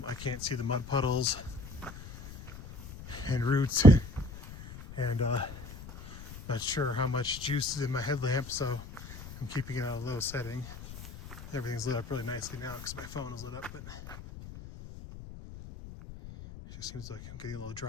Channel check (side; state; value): left; noise; rumble, 13 dB below the sound